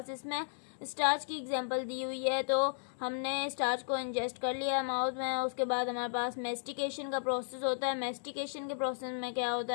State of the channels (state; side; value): silent; right; digital silence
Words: इसमें स्टार्च की एग्जांपल दी हुई है। तो हमने स्टार्च को इंजेस्ट कर लिया है माउथ में। उसके बाद हमारे पास मेस्टिकेशन का प्रोसेस होता है। मेस्टिकेशन के प्रोसेस में क्या